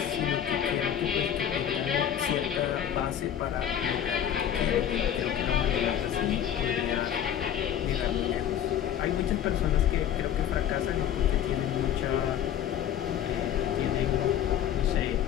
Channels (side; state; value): right; quieter; 9.9 dB